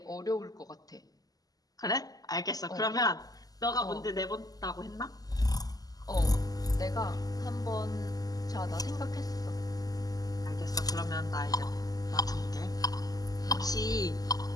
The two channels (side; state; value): right; late; 0.18 ms